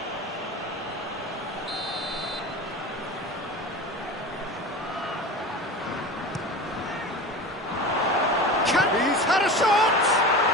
He's had a shot!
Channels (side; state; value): both; normal; correlation 0.31